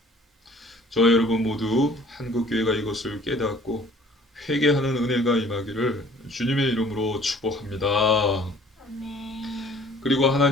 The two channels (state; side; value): normal; both; correlation 0.53